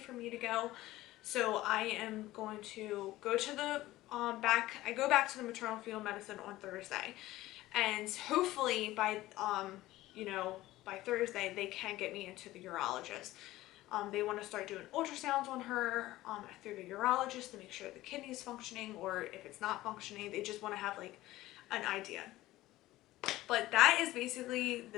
for me to go. So I am going to go to the I go back to the maternal fetal medicine on Thursday, and hopefully by you know, by Thursday they can get me into the urologist. They want to start doing ultrasounds on her through the urologist to make sure the kidney's functioning, or if it's not functioning, they just want to have like an idea. But that is basically the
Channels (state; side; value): quieter; right; 16.8 dB